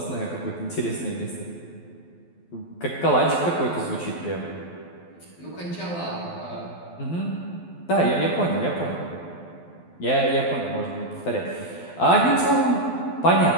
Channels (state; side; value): late; right; 12 ms